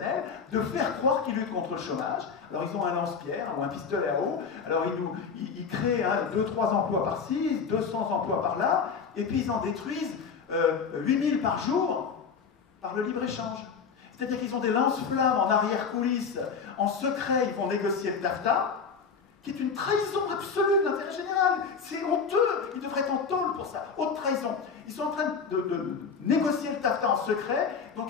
de faire croire qu'ils luttent contre le chômage. Alors ils ont un lance-pierre ou un pistolet à eau, alors ils créent 2-3 emplois par-ci, 200 emplois par-là, et puis ils en détruisent 8000 par jour par le libre-échange. C'est-à-dire qu'ils ont des lance-flammes en arrière-coulisses, en secret, ils vont négocier le TAFTA, qui est une trahison absolue de l'intérêt général. C'est honteux, ils devraient être en tôle pour ça, haute trahison. Ils sont en train de négocier le TAFTA en secret, donc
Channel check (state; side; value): quieter; right; 5.8 dB